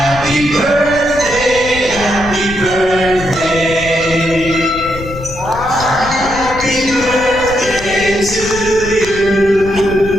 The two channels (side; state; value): left; noise; rumble, 12 dB below the sound